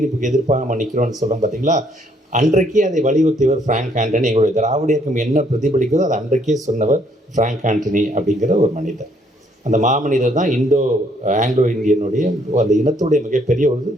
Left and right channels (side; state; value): both; normal; correlation 0.67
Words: எதிர்ப்பாக நம்ம நிற்கிறோம்னு சொல்கிறோம் பார்த்தீங்களா? அன்றைக்கே அதை வலியுறுத்தியவர் ஃப்ராங்க் ஆண்டனி. எங்களுடைய திராவிட இயக்கம் என்ன பிரதிபலிக்கிறதோ அதை அன்றைக்கே சொன்னவர் ஃப்ராங்க் ஆண்டனி அப்படிங்கிற ஒரு மனிதர். அந்த மாமனிதர் தான் ஆங்கிலோ இந்தியனுடைய அந்த இனத்துடைய மிகப்பெரிய ஒரு